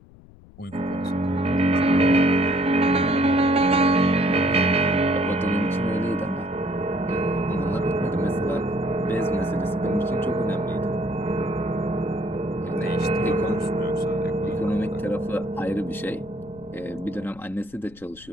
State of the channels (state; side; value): noise; left; rumble, 23 dB below the sound